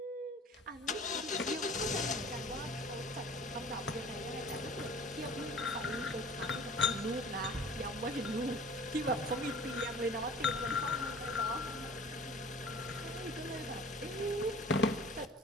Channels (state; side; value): normal; both; correlation 0.46